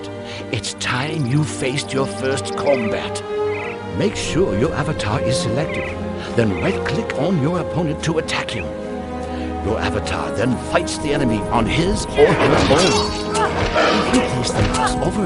It's time you faced your first combat. Make sure your avatar is selected, then right-click on your opponent to attack him. Your avatar then fights the enemy on his or her own. If you place the mouse over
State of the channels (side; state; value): both; identical; correlation 1.00